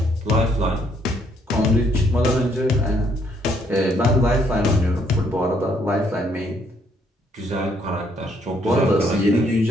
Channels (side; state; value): both; normal; correlation 0.69